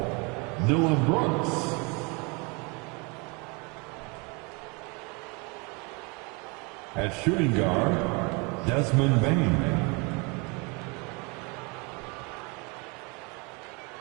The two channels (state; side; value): quieter; left; 30.1 dB